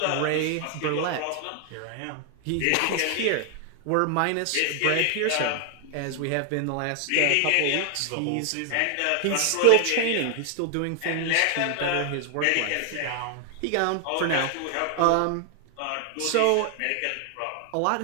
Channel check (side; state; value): both; different; correlation 0.00